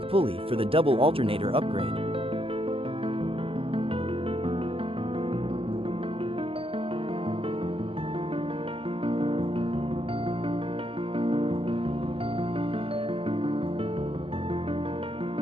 pulley for the double alternator upgrade.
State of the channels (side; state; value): left; late; 0.27 ms